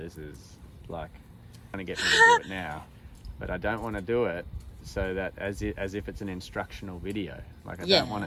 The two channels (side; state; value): both; identical; correlation 1.00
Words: is like trying to get me to do it now. But I don't want to do it so that as if it's an instructional video. Like I don't want